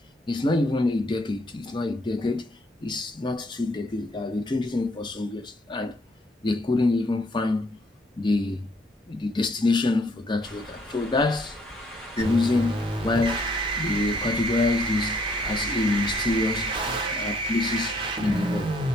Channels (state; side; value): normal; both; correlation 0.66